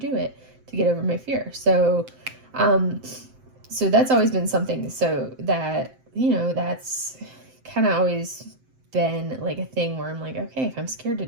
it to get over my fear. So that's always been something. So that, that's kind of always been like a thing where I'm like, okay, if I'm scared to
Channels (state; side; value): late; left; 7.7 ms